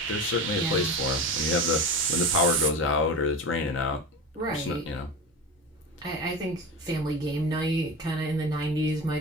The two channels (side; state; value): both; normal; correlation 0.26